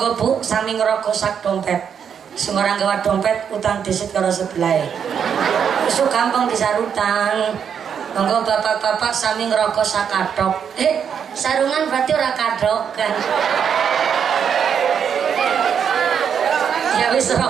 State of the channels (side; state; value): left; quieter; 7.6 dB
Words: Bu sami ngrokok sak dompet. Sembarang gawa dompet utang disit karo sebelah. Isu gampang disarutan. Monggo bapak-bapak sami ngerokok sak kadok. Sarungan berarti ora kadok kan. Ya wis